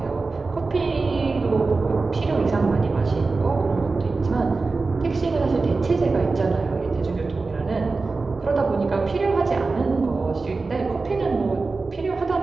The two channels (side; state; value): left; quieter; 3.9 dB